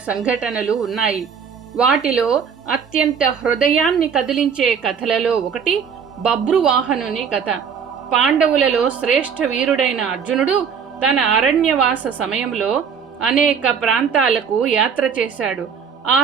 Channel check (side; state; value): left; quieter; 6.7 dB